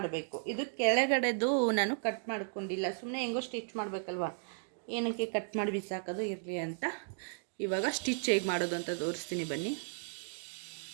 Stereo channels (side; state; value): left; silent; digital silence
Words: ಇದು ಕೆಳಗಡೆದು ನಾನು ಕಟ್ ಮಾಡ್ಕೊಂಡಿಲ್ಲ, ಸುಮ್ಮನೆ ಹೆಂಗೋ ಸ್ಟಿಚ್ ಮಾಡಬೇಕಲ್ವ, ಏನಕ್ಕೆ ಕಟ್ ಮಾಡಿ ಬಿಸಾಕೋದು ಇರಲಿ ಅಂತ. ಇವಾಗ ಸ್ಟಿಚ್ ಹೇಗೆ ಮಾಡೋದು ಅಂತ ತೋರಿಸ್ತೀನಿ ಬನ್ನಿ.